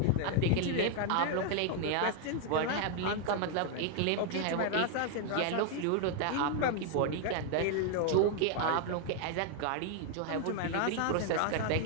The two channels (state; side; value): different; both; correlation 0.00